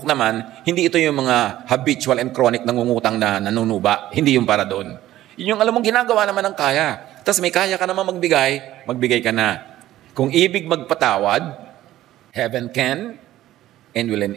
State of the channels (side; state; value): left; quieter; 14.3 dB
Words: naman, hindi ito yung mga habitual and chronic nangungutang na nanunuba. Hindi yung para doon. Yun yung alam mong ginagawa naman ng kaya. Tapos may kaya ka naman magbigay ka na. Kung ibig magpatawad, heaven can and will